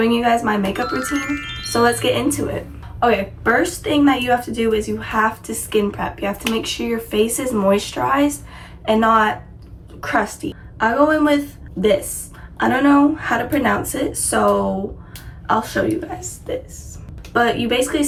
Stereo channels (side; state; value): both; identical; correlation 1.00